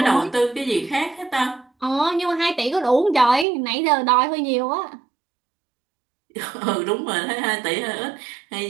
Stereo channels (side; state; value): left; drops out; at 3.5 s